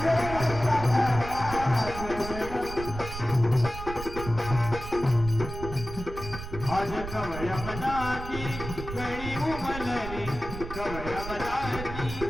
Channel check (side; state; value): right; noise; rumble, 9 dB below the sound